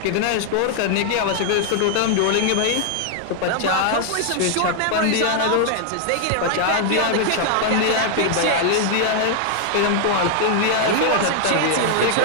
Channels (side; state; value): both; different; correlation 0.00